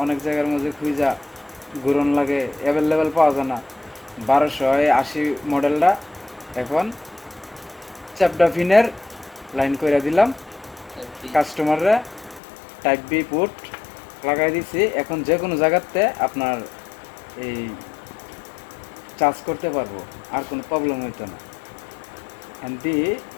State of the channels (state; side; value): drops out; right; at 12.4 s